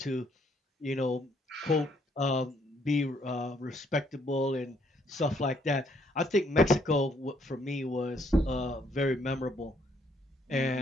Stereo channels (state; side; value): normal; both; correlation 0.68